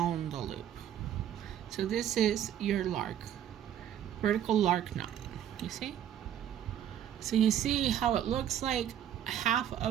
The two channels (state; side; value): quieter; left; 10.3 dB